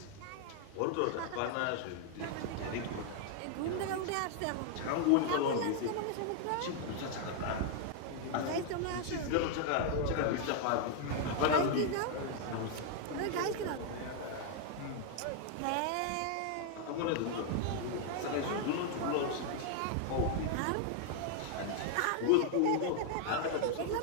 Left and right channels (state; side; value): different; both; correlation 0.00